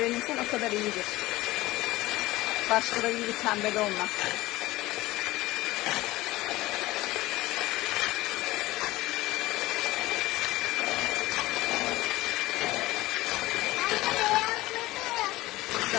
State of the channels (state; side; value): quieter; right; 18.4 dB